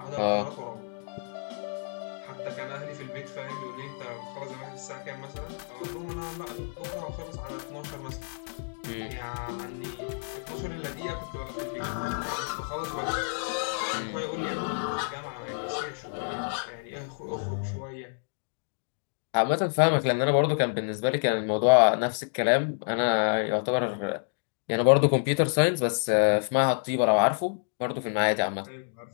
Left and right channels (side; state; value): right; silent; digital silence